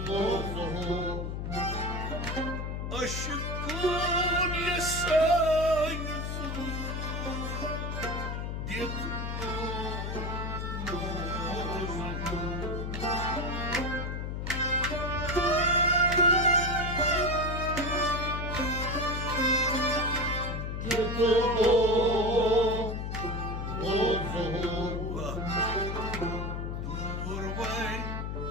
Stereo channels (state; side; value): noise; left; hum, 3 dB below the sound